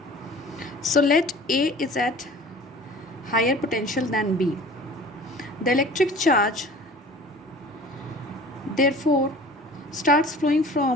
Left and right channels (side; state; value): both; normal; correlation 0.44